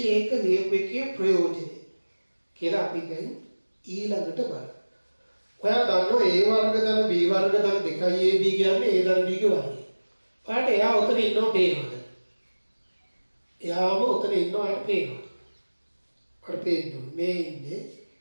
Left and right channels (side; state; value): both; inverted; correlation -1.00